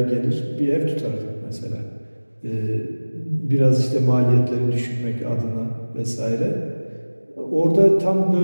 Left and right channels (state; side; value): inverted; both; correlation -1.00